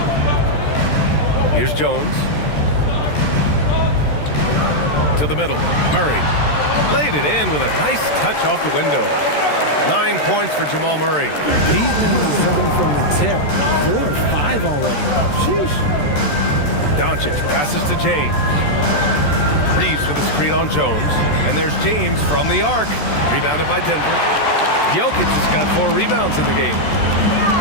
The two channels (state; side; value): late; right; 13 ms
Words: Here's Jones. To the middle. Murray. Laid it in with a nice touch off the window. 9 points for Jamal Murray. He's been in the zone from the tip. 4 or 5 already. Sheesh. Doncic passes to James. Reeves with a screen on Jones. And there's James from the arc. Rebounded by Denver. Jokic has got 4 rebounds in the game.